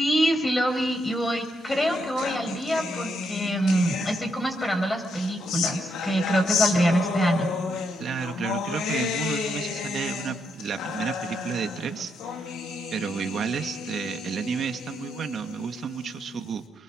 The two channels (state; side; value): normal; both; correlation 0.78